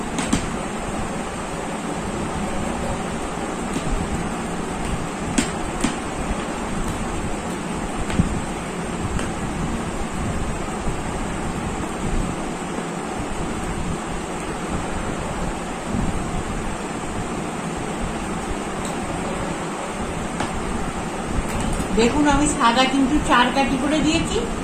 দেখুন আমি সাদা কিন্তু 4 কাঠি করে দিয়েছি,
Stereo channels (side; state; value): both; identical; correlation 1.00